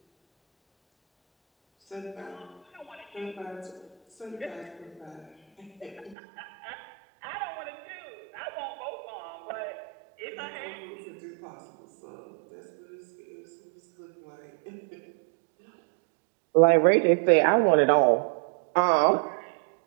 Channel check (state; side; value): drops out; left; at 6.2 s